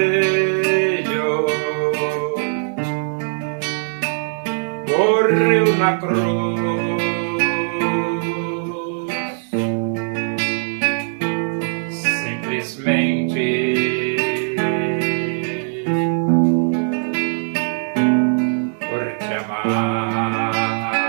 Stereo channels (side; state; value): left; silent; digital silence